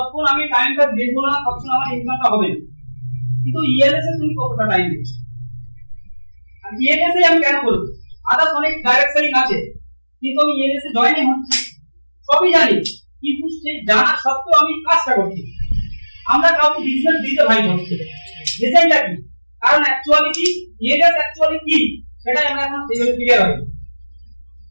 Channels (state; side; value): inverted; both; correlation -1.00